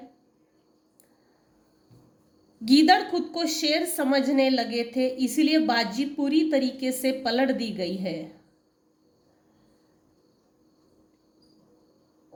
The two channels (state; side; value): identical; both; correlation 1.00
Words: गीदड़ खुद को शेर समझने लगे थे, इसीलिए बाजी पूरी तरीके से पलट दी गई है।